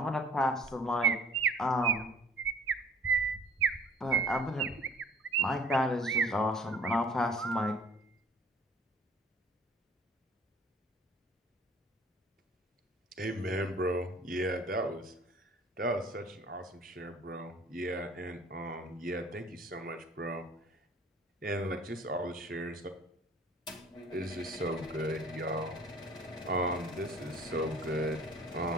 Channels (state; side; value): normal; both; correlation 0.51